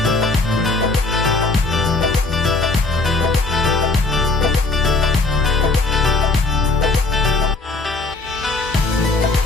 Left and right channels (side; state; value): right; quieter; 3.4 dB